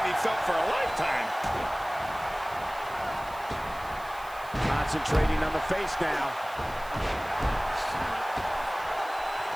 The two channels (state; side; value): noise; right; hiss, 21 dB below the sound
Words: be felt for a lifetime. Concentrating on the face now.